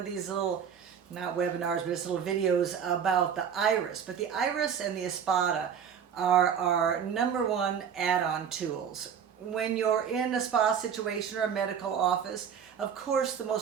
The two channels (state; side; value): quieter; left; 7.7 dB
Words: these little, not webinars, but it's little videos about the iris. But the iris and the espada are our number one add-on tools. When you're in a spa situation or a medical office, of course the